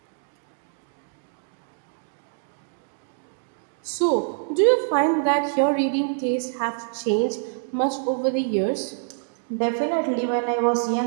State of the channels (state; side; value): silent; left; digital silence